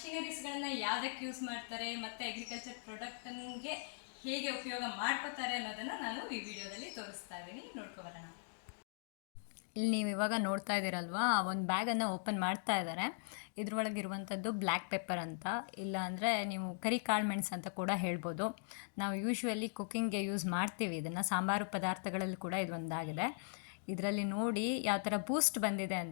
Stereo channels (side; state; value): right; silent; digital silence